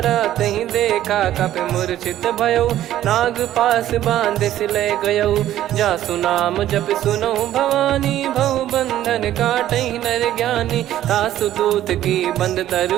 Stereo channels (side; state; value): left; quieter; 12.7 dB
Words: तहि देखा कपि मूर्छित भयो, नाग पास बांध सिले गयो। जासु नाम जप सुनहु भवानी, भव बंधन काटहि नर ज्ञानी। तासु दूत की बंद